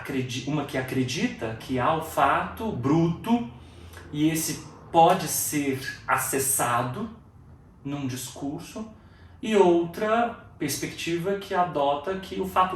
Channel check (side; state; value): both; identical; correlation 1.00